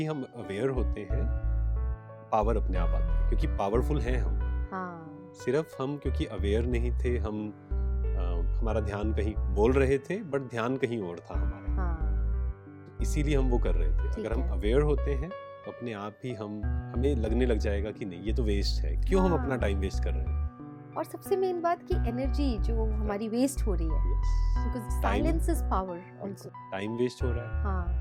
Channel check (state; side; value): identical; both; correlation 1.00